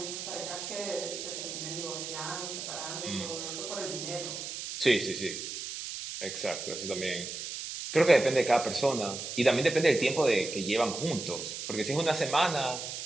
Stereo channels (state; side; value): noise; right; hiss, 7 dB below the sound